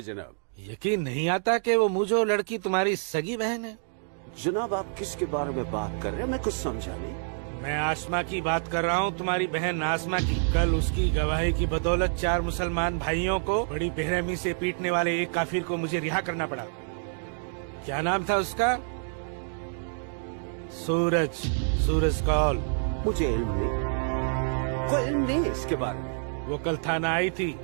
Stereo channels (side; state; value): left; silent; digital silence